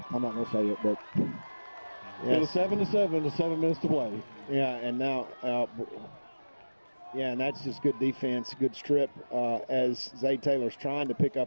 not going to say it, but it was 7-7 with 7 minutes to play. Yeah, and now, and that's just good defense, good strip as Zay Taylor's trying to pick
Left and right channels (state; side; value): inverted; both; correlation -1.00